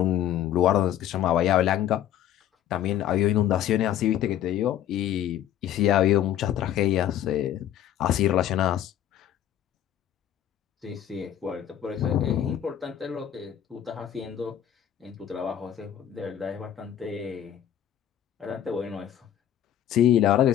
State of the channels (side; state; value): right; quieter; 11.0 dB